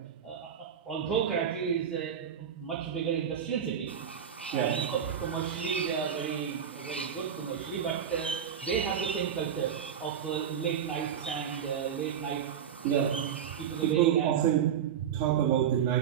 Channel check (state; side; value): quieter; left; 8.5 dB